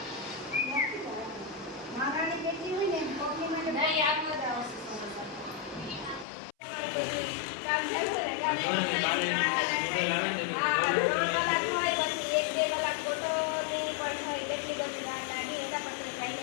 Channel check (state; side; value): drops out; right; at 6.2 s